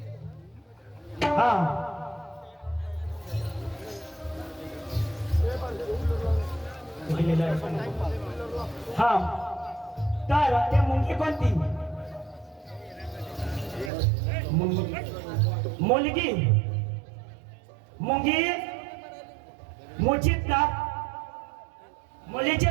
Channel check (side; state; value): left; drops out; at 13.9 s